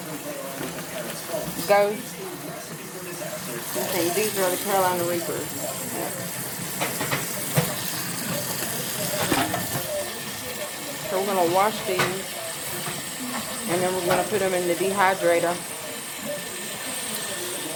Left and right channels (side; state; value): both; identical; correlation 1.00